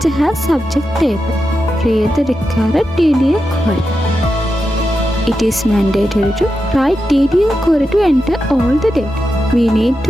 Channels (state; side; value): normal; both; correlation 0.89